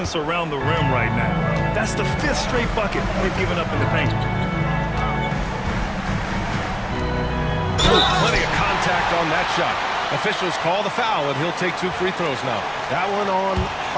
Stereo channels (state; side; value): identical; both; correlation 1.00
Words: around the rim right now. That's the 5th straight bucket they've given up in the paint. Plenty of contact on that shot. Officials call the foul, and he'll take 2 free throws now. That one on